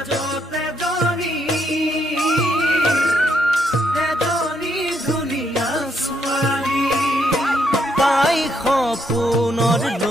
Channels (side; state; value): both; normal; correlation 0.75